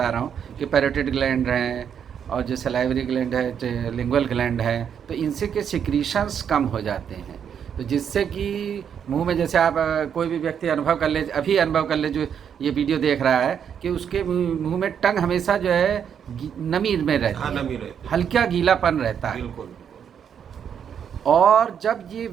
रहा हूँ कि पैरोटिड ग्लैंड हैं और जो सलाइवरी ग्लैंड है, जो लिंगुअल ग्लैंड है, तो इनसे के सिक्रीशंस कम हो जाते हैं। तो जिससे कि मुंह में, जैसे आप कोई भी व्यक्ति अनुभव कर ले, अभी अनुभव कर ले जो ये वीडियो देख रहा है, कि उसके मुंह में टंग हमेशा जो है नमी में रहती है, नमी रहती है, हल्का गीलापन रहता है। बिल्कुल। और जब ये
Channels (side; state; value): left; quieter; 8.1 dB